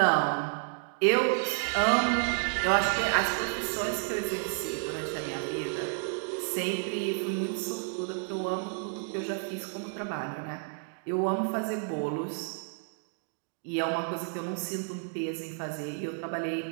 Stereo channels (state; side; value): silent; left; 57 dB below the other